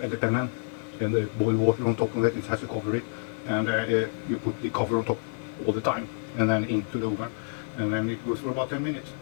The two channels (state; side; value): silent; right; digital silence